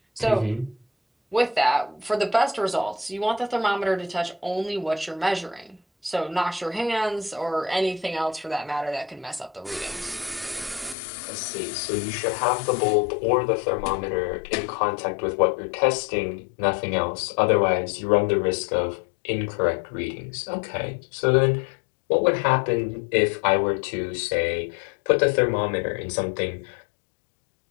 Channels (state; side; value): drops out; right; at 11.0 s